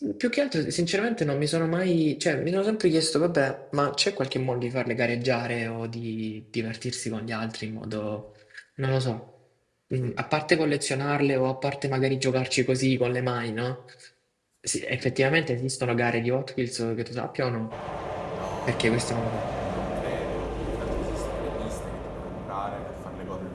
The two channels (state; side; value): identical; both; correlation 1.00